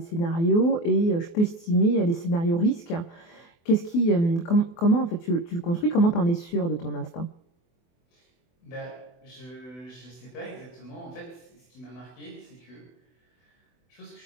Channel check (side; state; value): right; late; 24 ms